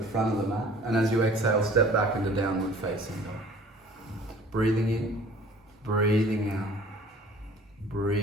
front of the mat. And as you exhale, step back into downward facing dog. Breathing in, breathing out.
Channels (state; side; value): normal; both; correlation 0.50